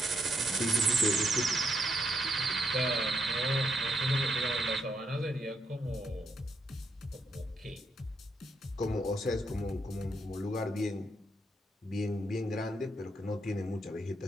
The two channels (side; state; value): both; normal; correlation 0.77